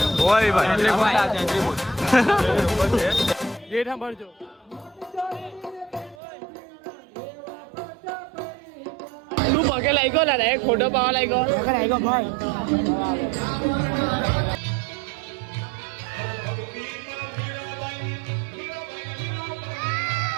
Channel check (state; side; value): drops out; left; at 6.2 s